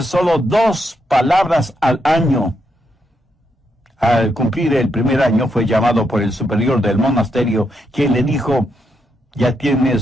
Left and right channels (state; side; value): normal; both; correlation 0.80